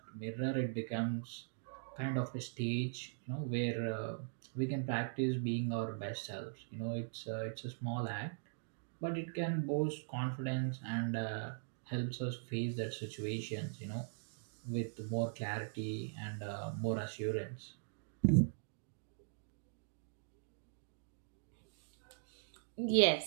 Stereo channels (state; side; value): silent; left; digital silence